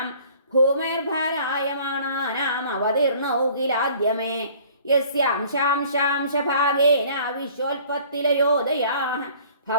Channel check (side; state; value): both; inverted; correlation -0.52